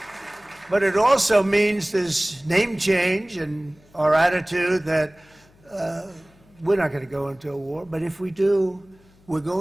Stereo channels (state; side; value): noise; left; hum, 30 dB below the sound